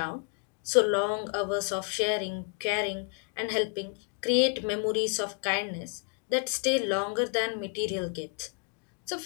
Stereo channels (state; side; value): quieter; right; 36.3 dB